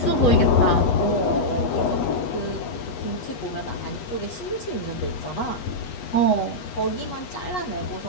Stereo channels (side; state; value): right; late; 8.2 ms